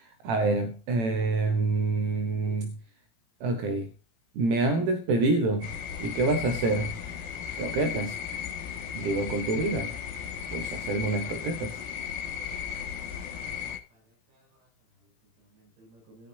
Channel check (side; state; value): left; late; 18 ms